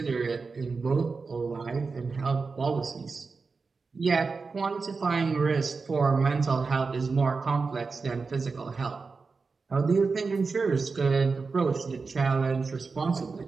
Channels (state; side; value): quieter; left; 4.5 dB